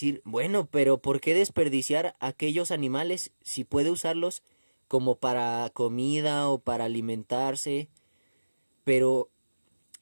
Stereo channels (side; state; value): both; inverted; correlation -1.00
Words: bueno, pero ¿por qué desperdiciar aquellos animales si puede usarlos como para comida o para alimentarse? Pero